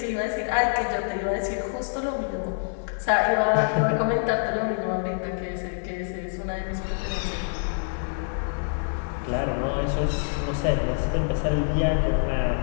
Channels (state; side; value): silent; right; 61 dB below the other